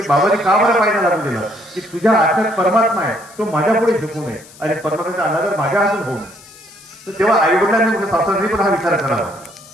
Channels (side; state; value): left; noise; hiss, 22 dB below the sound